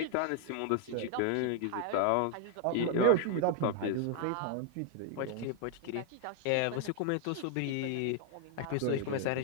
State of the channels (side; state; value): both; different; correlation 0.00